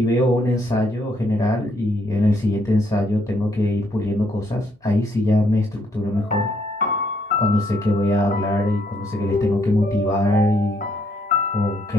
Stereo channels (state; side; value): normal; both; correlation 0.71